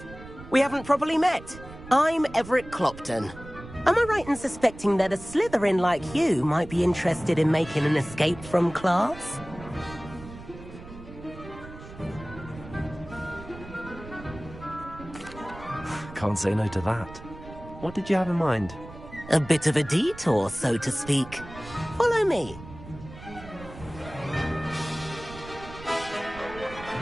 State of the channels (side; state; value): right; noise; rumble, 15 dB below the sound